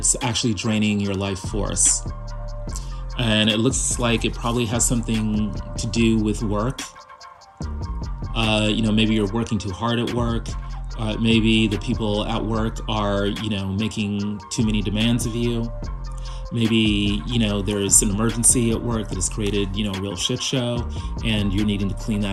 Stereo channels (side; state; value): both; identical; correlation 1.00